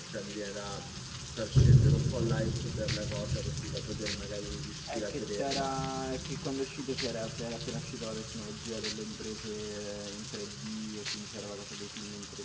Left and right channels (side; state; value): both; identical; correlation 1.00